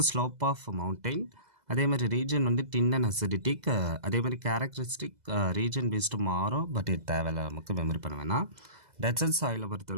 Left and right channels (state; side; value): late; left; 2.0 ms